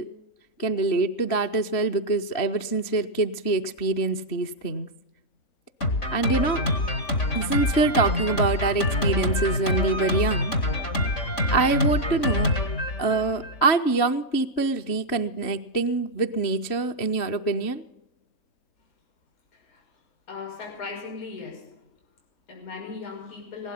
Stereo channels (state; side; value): late; right; 3.1 ms